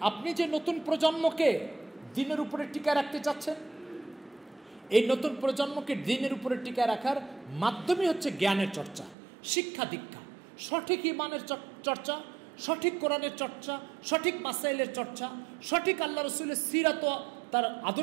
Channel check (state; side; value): drops out; left; at 9.2 s